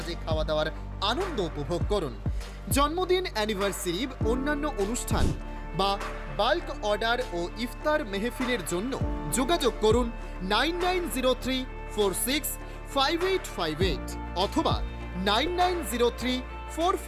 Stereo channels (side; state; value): both; identical; correlation 1.00